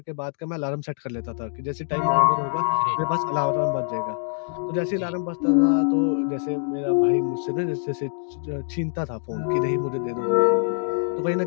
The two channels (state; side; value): silent; right; 60 dB below the other